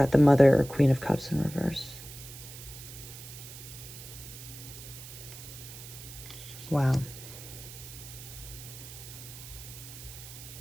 the Mother or Queen of Cups in reverse. Wow.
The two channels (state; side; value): noise; right; hiss, 14 dB below the sound